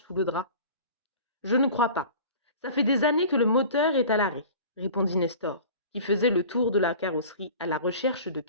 le drap. « Je ne crois pas. Ça fait des années que le moteur est à l'arrêt, » répondit Nestor, qui faisait le tour de la carrosserie à la recherche de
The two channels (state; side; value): inverted; both; correlation -0.41